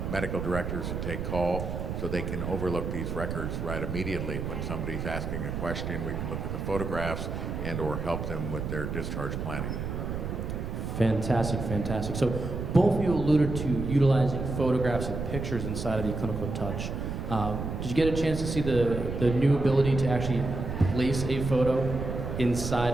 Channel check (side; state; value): right; noise; rumble, 4 dB below the sound